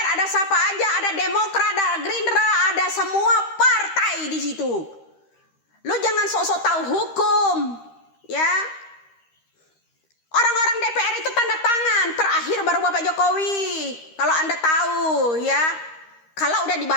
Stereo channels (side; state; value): right; late; 13 ms